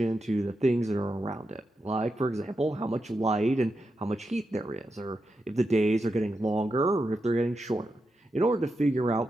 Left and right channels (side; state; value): both; normal; correlation 0.87